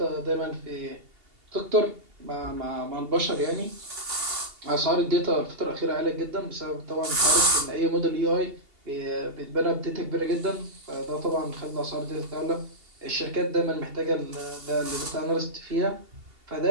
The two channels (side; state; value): left; late; 2.8 ms